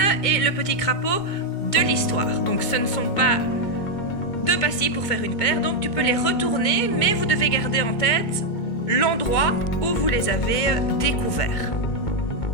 et le petit crapaud de l'histoire. Donc ce ne sont pas 2 pastilles pour faire une paire, donc tu peux les retourner, mais vous devez garder en tête l'endroit où vous les avez découverts.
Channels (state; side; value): late; right; 2.2 ms